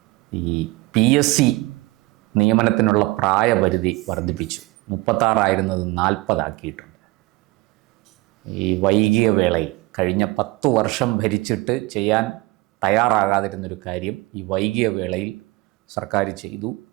ഈ PSC നിയമനത്തിനുള്ള പ്രായപരിധി വർദ്ധിപ്പിച്ചു. 36 40 ആക്കിയിട്ടുണ്ട്. ഈ വൈകിയ വേളയിൽ കഴിഞ്ഞ 10 വർഷം ഭരിച്ചിട്ട് ചെയ്യാൻ തയ്യാറാകാതിരുന്നൊരു കാര്യം ഈ വൈകിയ വേളയിൽ സർക്കാർ ചെയ്തു.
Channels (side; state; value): left; quieter; 22.0 dB